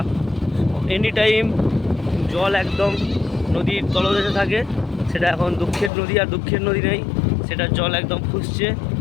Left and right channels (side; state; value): right; drops out; at 5.9 s